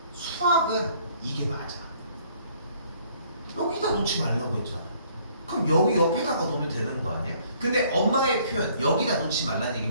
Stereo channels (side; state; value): both; inverted; correlation -0.61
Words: 수학은 이게 맞아. 여기다 놓지 말라고 했잖아. 그럼 여기 옆에다가 놓으면 되는 거 아니야? 근데 엄마의 표현, 여기다 놓지 말라는